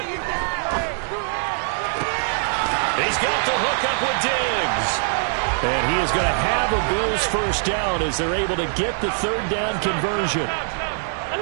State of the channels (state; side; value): silent; left; 64 dB below the other